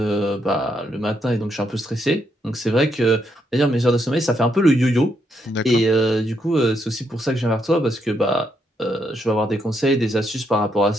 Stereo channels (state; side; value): normal; both; correlation 0.77